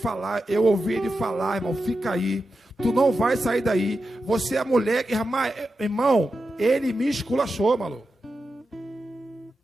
irmão, fica aí, tu não vai sair daí, você é a mulher, irmão, Ele me esculachou, maluco.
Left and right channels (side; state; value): both; normal; correlation 0.90